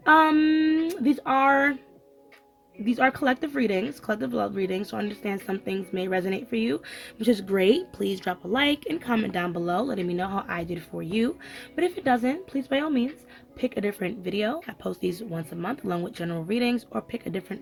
These are collective readings, collective love readings, so I understand some things may resonate for you, which is great. Please drop a like and comment down below letting me know how I did for you. But if it doesn't, please by all means pick a different video. I post these once a month along with general readings, or pick a different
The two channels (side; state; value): both; identical; correlation 1.00